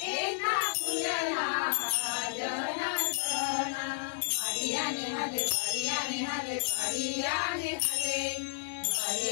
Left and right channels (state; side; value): silent; right; digital silence